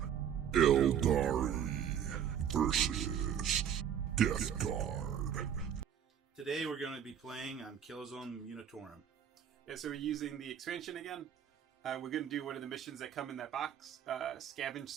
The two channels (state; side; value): quieter; left; 8.9 dB